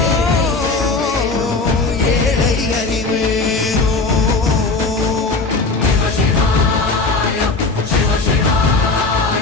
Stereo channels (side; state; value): right; quieter; 3.7 dB